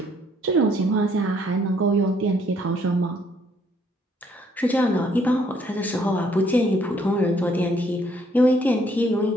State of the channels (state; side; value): normal; both; correlation 0.66